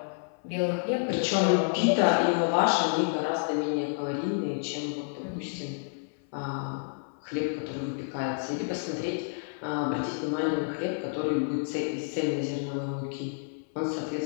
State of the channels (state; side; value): silent; right; 58 dB below the other